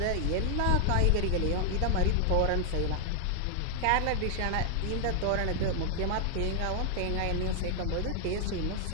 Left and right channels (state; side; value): different; both; correlation 0.00